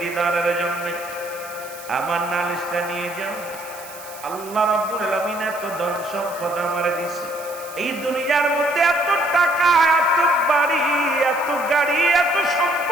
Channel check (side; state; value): right; noise; hiss, 17 dB below the sound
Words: দিদারের জন্য আমার নালিশটা নিয়ে যাও। আল্লাহ রাব্বুল আলামিন এত ধন সম্পদ আমারে দিছে, এই দুনিয়ার মধ্যে এত টাকা, এত বাড়ি, এত গাড়ি, এত